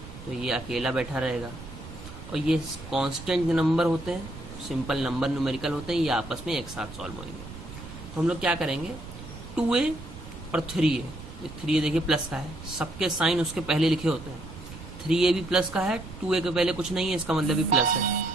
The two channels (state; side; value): noise; right; rumble, 13 dB below the sound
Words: तो ये अकेला बैठा रहेगा। और ये कांस्टेंट नंबर होते हैं, सिंपल नंबर न्यूमेरिकल होते हैं, ये आपस में एक साथ सॉल्व होंगे। तो हम लोग क्या करेंगे, 2a और 3a, 3a देखिए प्लस का है, सबके साइन उसके पहले लिखे होते हैं। 3a भी प्लस का है, 2a के पहले कुछ नहीं है, इसका मतलब भी प्लस है,